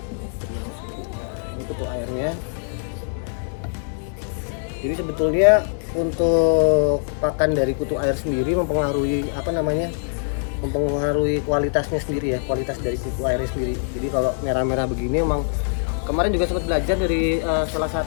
ini kutu airnya. Jadi sebetulnya untuk pakan dari kutu air sendiri mempengaruhi apa namanya, mempengaruhi kualitasnya sendiri ya, kualitas dari kutu airnya sendiri. Jadi kalau merah-merah begini emang kemarin juga sempat belajar dari salah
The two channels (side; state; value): right; silent; digital silence